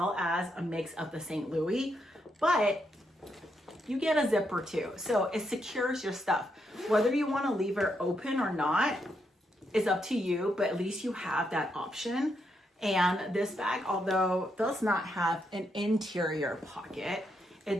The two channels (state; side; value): normal; both; correlation 0.80